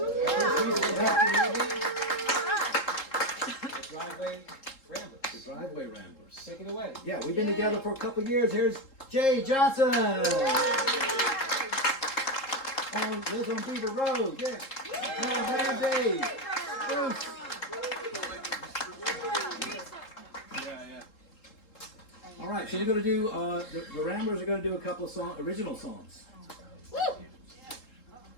driveway ramblers. Driveway Ramblers. Take it away. Yeah, we've been together for a couple years. Here's Jay Johnson. Lives on Beaver Road. Yeah. Man, Dave. Bruce. All right, so we're going to do, the Ramblers are going to do a couple of original songs.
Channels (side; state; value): right; late; 3.7 ms